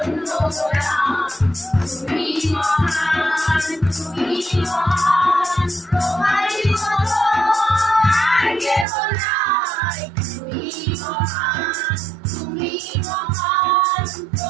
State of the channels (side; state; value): left; drops out; at 8.8 s